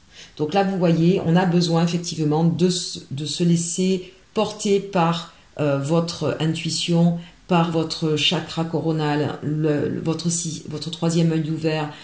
Donc là, vous voyez, on a besoin effectivement de se laisser porter par votre intuition, par votre chakra coronal, votre troisième œil ouvert.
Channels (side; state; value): both; identical; correlation 1.00